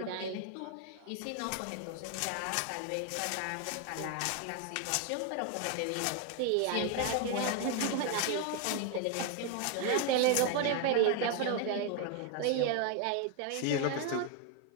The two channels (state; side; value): different; both; correlation 0.01